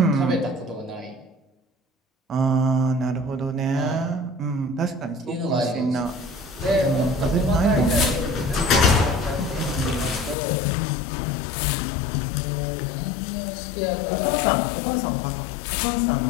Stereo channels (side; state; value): right; drops out; at 10.4 s